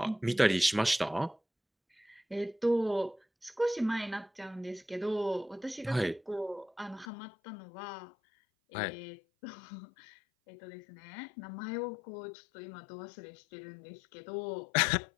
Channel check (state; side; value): drops out; right; at 7.1 s